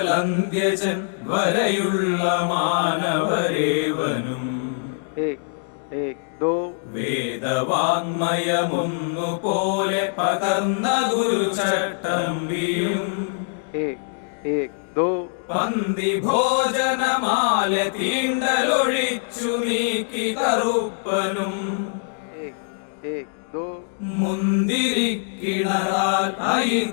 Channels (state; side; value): silent; right; digital silence